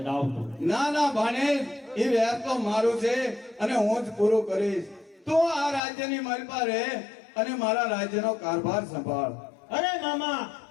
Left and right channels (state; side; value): drops out; right; at 5.8 s